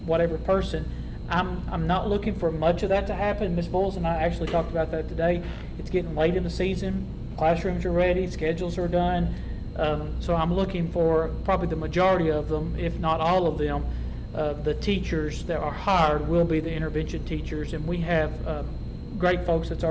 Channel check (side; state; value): both; identical; correlation 1.00